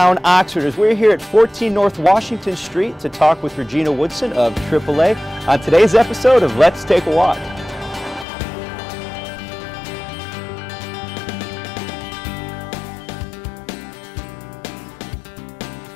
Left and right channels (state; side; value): drops out; right; at 8.2 s